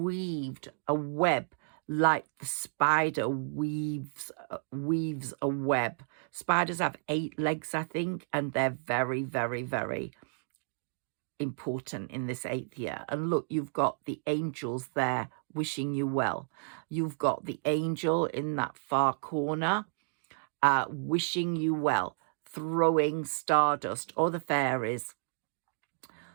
a web like the spider weaves a web. Spiders have 8 legs, I think, and they're very, very, very important in this 8th year. And look, you've got the angels there wishing you well. You've got the angel in that far corner wishing you well, throwing stardust, or the fairies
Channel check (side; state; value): left; silent; digital silence